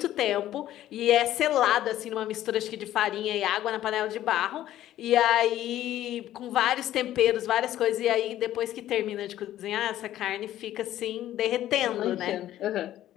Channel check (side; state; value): right; quieter; 13.1 dB